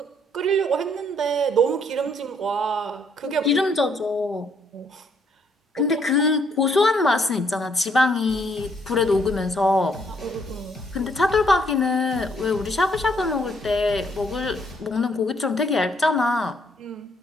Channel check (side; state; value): both; normal; correlation 0.68